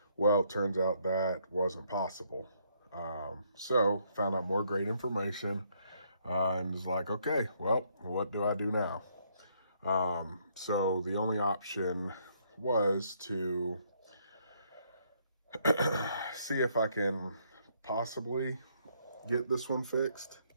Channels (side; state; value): both; inverted; correlation -0.70